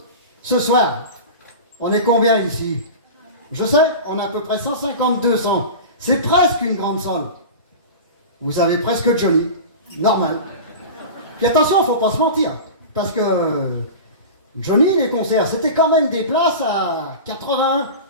Ce soir, on est combien ici? Je sais, on a à peu près 150-200. C'est presque une grande salle. Vous avez presque Johnny. Normal. Puis attention, il ne faut pas se mentir. Parce que Johnny, les concerts, c'était quand même des places à 80,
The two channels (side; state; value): both; inverted; correlation -0.31